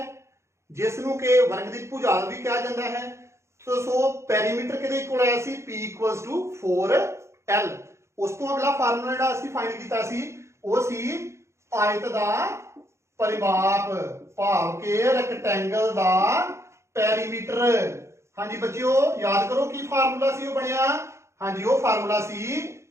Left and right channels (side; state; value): left; late; 0.14 ms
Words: ਜਿਸ ਨੂੰ ਕਿ ਵਰਗ ਦੀ ਭੁਜਾਲ ਵੀ ਕਿਹਾ ਜਾਂਦਾ ਹੈ। ਸੋ ਪੈਰੀਮੀਟਰ ਕਿਹਦੇ ਇਕੁਅਲ ਆਇਆ ਸੀ, P = 4L। ਉਸ ਤੋਂ ਅਗਲਾ ਫਾਰਮੂਲਾ ਜਿਹੜਾ ਅਸੀਂ ਫਾਈਂਡ ਕੀਤਾ ਸੀ ਉਹ ਸੀ ਆਇਤ ਦਾ ਪਰਿਮਾਪ, ਭਾਵ ਕਿ ਰੈਕਟੈਂਗਲ ਦਾ ਪੈਰੀਮੀਟਰ। ਹਾਂਜੀ ਬੱਚਿਓ ਯਾਦ ਕਰੋ ਕੀ ਫਾਰਮੂਲਾ ਸੀ ਉਹ ਬਣਿਆ, ਹਾਂਜੀ ਉਹ ਫਾਰਮੂਲਾ ਸੀ